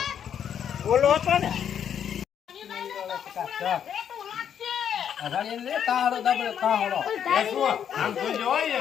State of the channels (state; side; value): quieter; right; 8.8 dB